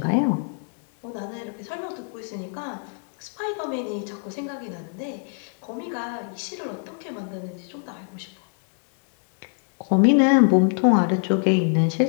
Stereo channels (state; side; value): silent; right; 56 dB below the other